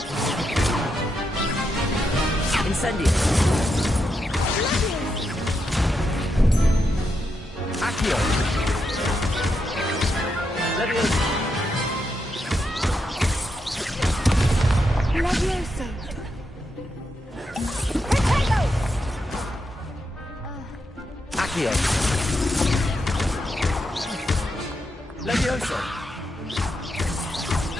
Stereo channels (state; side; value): normal; both; correlation 0.83